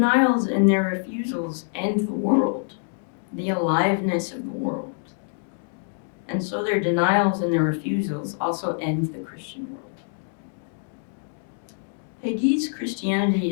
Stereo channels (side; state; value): right; silent; 61 dB below the other